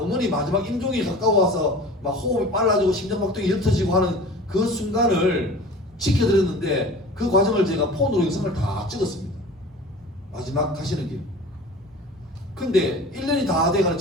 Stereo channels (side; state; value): both; normal; correlation 0.40